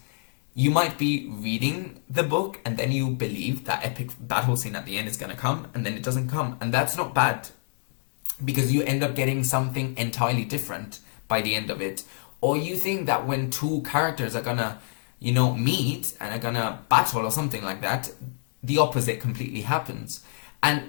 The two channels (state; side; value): silent; right; digital silence